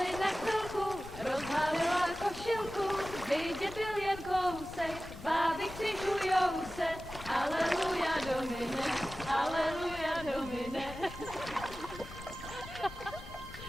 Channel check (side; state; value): left; noise; rumble, 14 dB below the sound